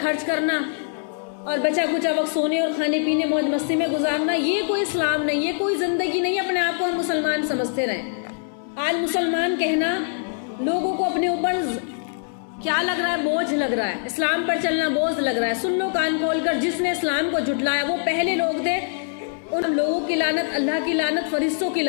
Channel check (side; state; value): right; silent; digital silence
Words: خرچ کرنا اور بچا کچا وقت سونے اور کھانے پینے موج مستی میں گزارنا، یہ کوئی اسلام نہیں، یہ کوئی زندگی نہیں۔ اپنے آپ کو ہم مسلمان سمجھتے رہیں۔ آج مسلمان کہنا لوگوں کو اپنے اوپر کیا لگ رہا ہے؟ بوجھ لگ رہا ہے۔ اسلام پر چلنا بوجھ لگ رہا ہے۔ سن لو کان کھول کر، جس نے اسلام کو جھٹلایا وہ پہلے لوگ تھے، ان لوگوں کی لعنت، اللہ کی لعنت، فرشتوں کی